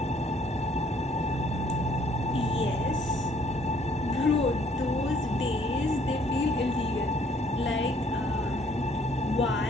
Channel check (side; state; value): both; normal; correlation 0.63